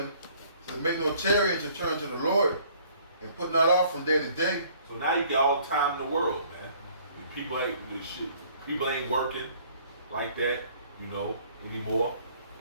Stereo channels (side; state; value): both; inverted; correlation -0.58